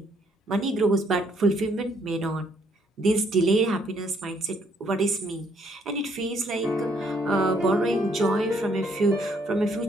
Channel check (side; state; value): both; normal; correlation 0.68